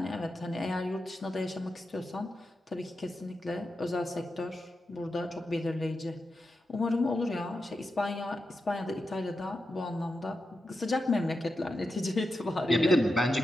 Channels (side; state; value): both; normal; correlation 0.89